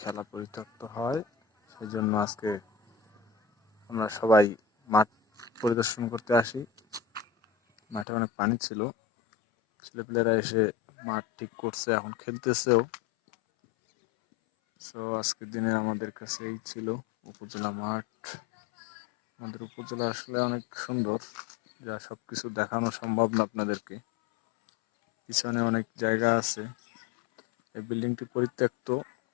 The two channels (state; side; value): drops out; right; at 8.1 s